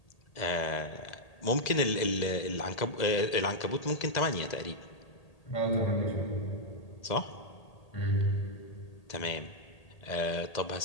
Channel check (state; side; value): late; right; 1.8 ms